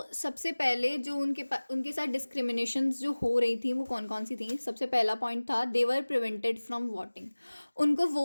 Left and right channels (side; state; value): both; inverted; correlation -1.00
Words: सबसे पहले जो उनके साथ डिस्क्रिमिनेशन जो हो रही थी वो कौन कौन सी थी। सबसे पहला पॉइंट था, they were prevented from voting. उनको